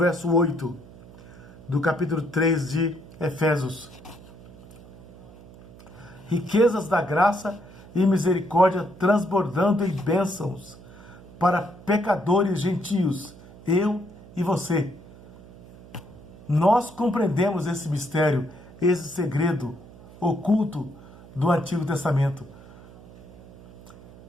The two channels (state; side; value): noise; right; hum, 20 dB below the sound